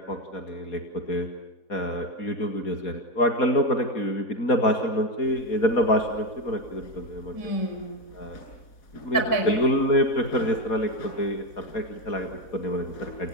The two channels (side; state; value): right; late; 4.1 ms